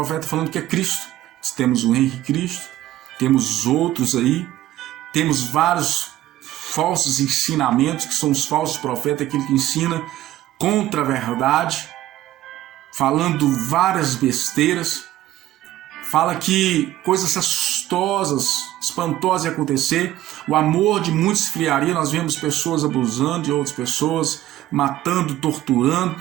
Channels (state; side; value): quieter; left; 14.2 dB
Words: falando que é Cristo. Temos o Henrique Cristo, temos outros aí, temos vários falsos ensinamentos, que são os falsos profetas, aquele que ensina contra a verdade, falando várias besteiras, fala que coisas assustosas, espantosas iam acontecer, o amor de muitos esfriaria, nós vemos pessoas abusando de outras pessoas, matando,